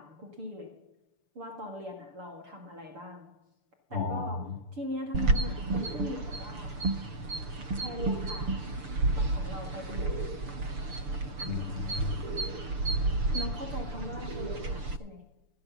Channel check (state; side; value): late; left; 6.8 ms